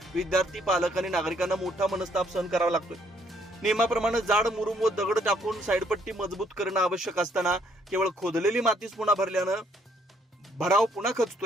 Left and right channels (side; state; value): both; normal; correlation 0.67